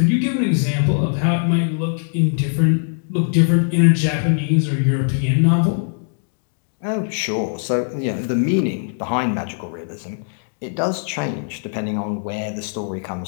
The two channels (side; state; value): right; silent; digital silence